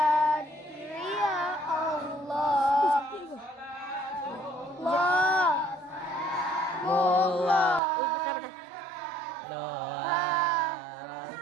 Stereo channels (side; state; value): left; drops out; at 7.8 s